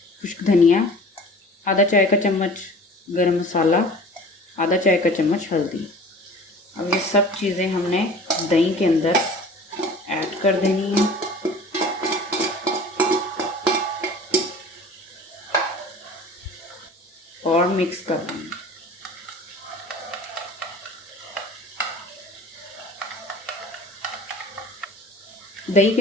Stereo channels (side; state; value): both; normal; correlation 0.43